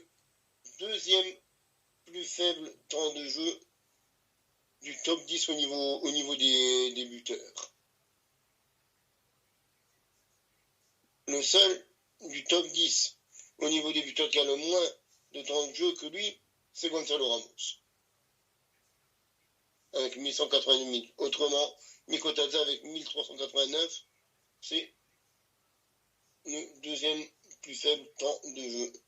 2e plus faible temps de jeu du top 10 au niveau des buteurs. Le seul du top 10 au niveau des buteurs qui a le moins de temps de jeu que lui, c'est Gonzalo Ramos. Avec 1180 minutes. Autrement, Mikotadze avec 1389, c'est le 2e plus faible temps de jeu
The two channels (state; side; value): identical; both; correlation 1.00